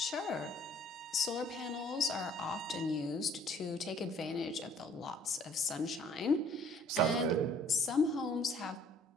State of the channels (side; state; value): both; normal; correlation 0.57